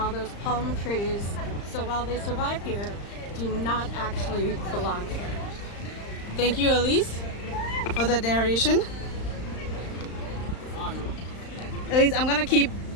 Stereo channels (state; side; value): late; right; 35 ms